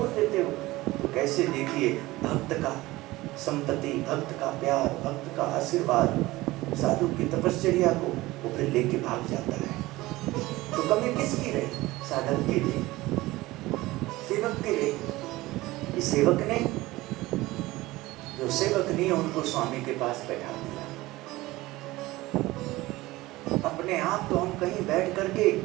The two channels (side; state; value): left; quieter; 19.0 dB